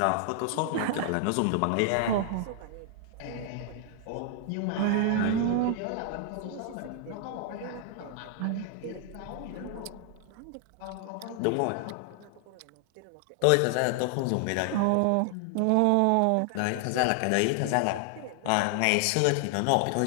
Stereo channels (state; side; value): different; both; correlation 0.00